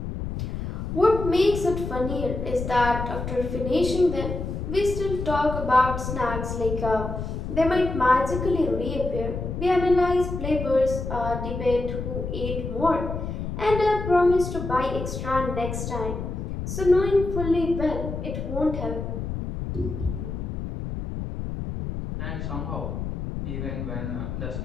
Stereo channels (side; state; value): left; noise; rumble, 5 dB below the sound